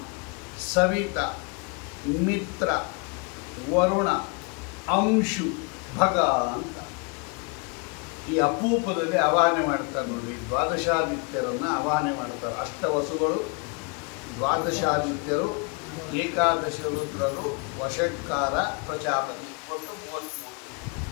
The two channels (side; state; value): right; quieter; 31.7 dB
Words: ಸವಿತ, ಮಿತ್ರ, ವರುಣ, ಅಂಶು, ಭಗ ಅಂತ ಈ ಅಪೂಪದಲ್ಲಿ ಆವಾಹನೆ ಮಾಡ್ತಾರೆ ನೋಡಿ. 12 ಆದಿತ್ಯರನ್ನು ಆವಾಹನೆ ಮಾಡ್ತಾರೆ. ಅಷ್ಟವಸುಗಳು, 12 ಆದಿತ್ಯರು, 11 ರುದ್ರರು, ವಷಟ್ಕಾರ, ಪ್ರಜಾಪತಿ, ಒಟ್ಟು 33.